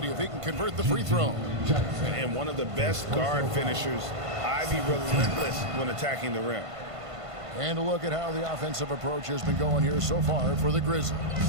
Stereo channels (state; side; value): late; left; 1.5 ms